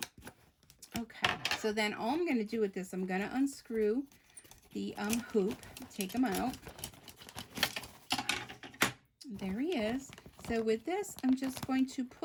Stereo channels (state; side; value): identical; both; correlation 1.00